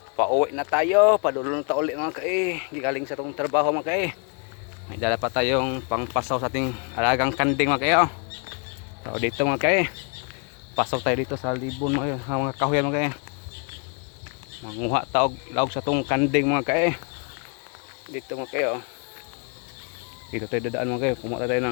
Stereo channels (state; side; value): quieter; right; 38.3 dB